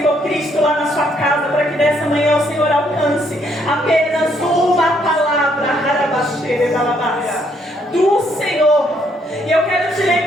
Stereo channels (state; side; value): normal; both; correlation 0.70